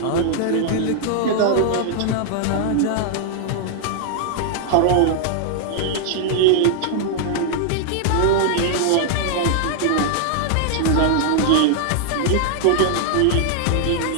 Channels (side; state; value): both; different; correlation 0.00